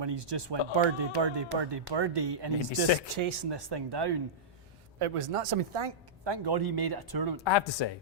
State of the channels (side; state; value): both; normal; correlation -0.13